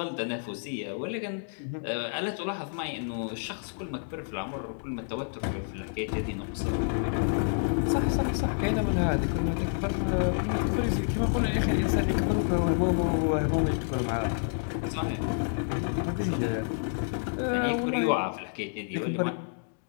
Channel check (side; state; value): right; silent; digital silence